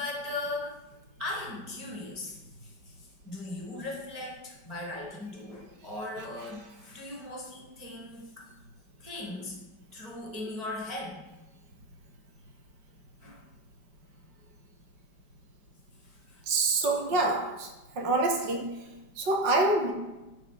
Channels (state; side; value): late; left; 5.1 ms